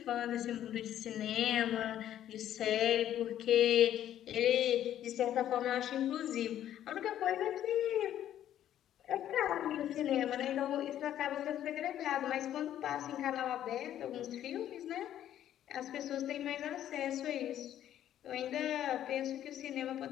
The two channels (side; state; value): right; quieter; 11.4 dB